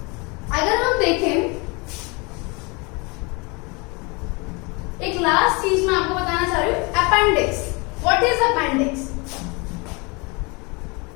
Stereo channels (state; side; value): quieter; right; 28.8 dB